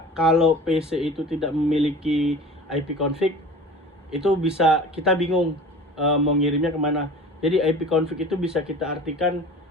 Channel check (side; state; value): both; normal; correlation 0.40